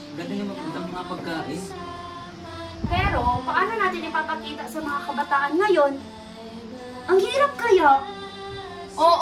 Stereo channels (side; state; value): both; identical; correlation 1.00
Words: ganda yung mga pagkain. Pero, paano natin ipapakita sa mga kabataan ngayon? Ang hirap kaya.